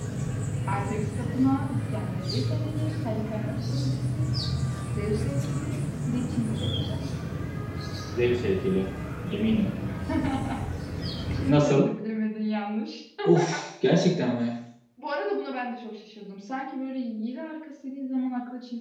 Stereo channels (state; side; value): identical; both; correlation 1.00